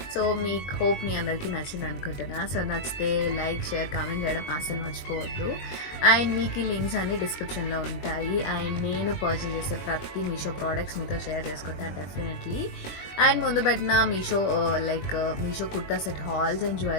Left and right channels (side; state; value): right; late; 21 ms